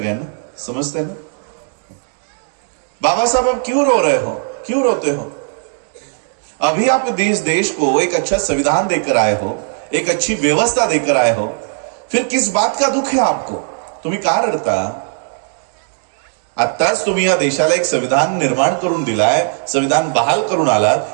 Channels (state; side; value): silent; left; 68 dB below the other